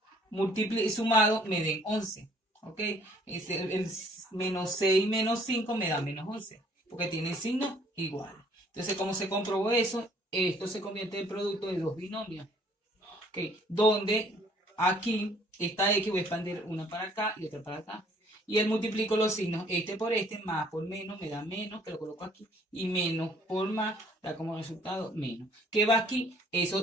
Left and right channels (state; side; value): normal; both; correlation 0.60